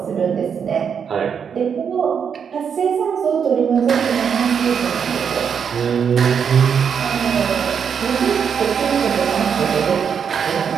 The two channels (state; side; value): quieter; left; 7.1 dB